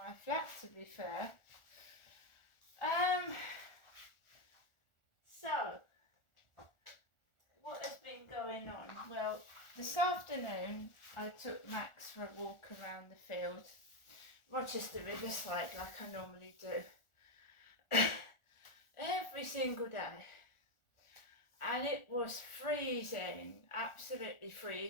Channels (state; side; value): late; right; 1.4 ms